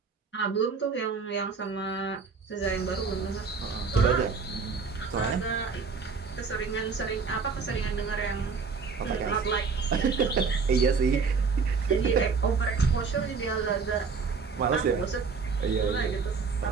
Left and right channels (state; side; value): quieter; left; 5.1 dB